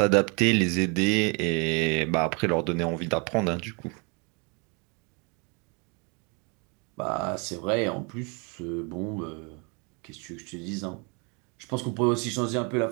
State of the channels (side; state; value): left; quieter; 32.9 dB